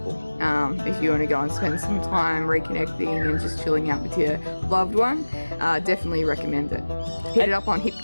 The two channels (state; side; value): inverted; both; correlation -1.00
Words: If you want to go and spend some time reconnecting and just chilling out with your loved one, definitely recommend it. Hit it up on Hip